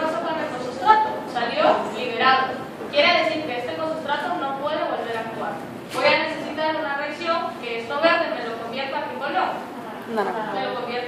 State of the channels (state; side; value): identical; both; correlation 1.00